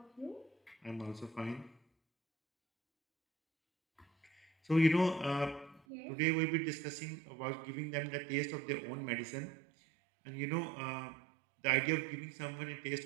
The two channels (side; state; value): left; drops out; at 5.8 s